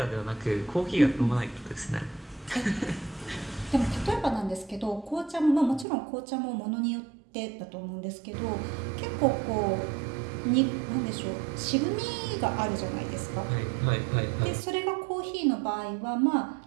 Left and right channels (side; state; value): left; drops out; at 5.9 s